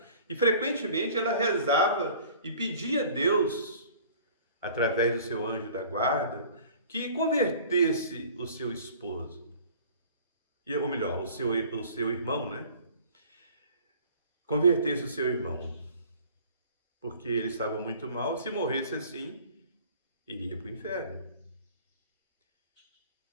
e frequentemente ela rezava e pedia a Deus, através do seu anjo da guarda, que convertesse o seu esposo, ou melhor, o seu irmão, né? Convertesse o seu irmão, porque ele estava muito mal, se morresse assim, iria para o inferno.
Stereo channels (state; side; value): inverted; both; correlation -0.48